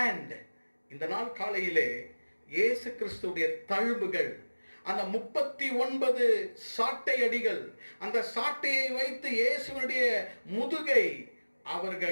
இந்த நாள் காலையிலே இயேசு கிறிஸ்துடைய தழும்புகள், அந்த 39 சாட்டை அடிகள், அந்த சாட்டையை வைத்து இயேசுவினுடைய முதுகை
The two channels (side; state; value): both; inverted; correlation -1.00